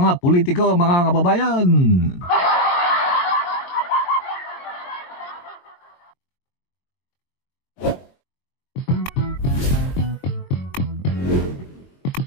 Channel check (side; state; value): right; late; 22 ms